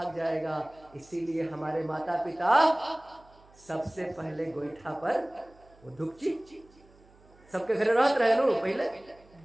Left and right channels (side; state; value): right; noise; hum, 28 dB below the sound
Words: जाएगा। इसीलिए हमारे माता पिता सबसे पहले गोईठा पर वो धूपची सबके घर रहते रहे नो, पहले